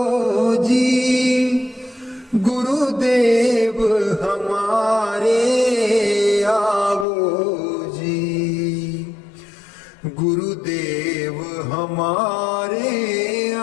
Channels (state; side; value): drops out; right; at 7.1 s